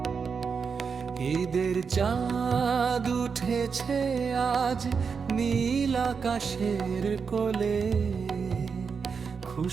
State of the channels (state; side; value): quieter; left; 5.7 dB